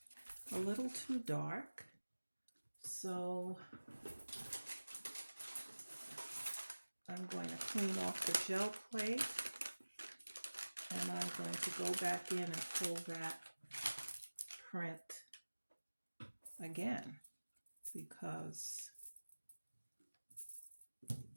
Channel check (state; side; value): inverted; both; correlation -1.00